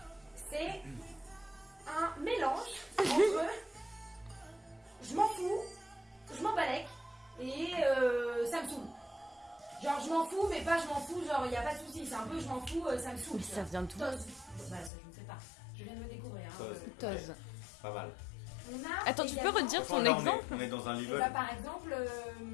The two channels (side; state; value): right; drops out; at 14.9 s